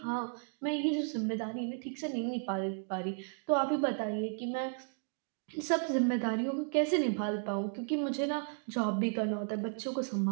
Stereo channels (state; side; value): silent; left; 55 dB below the other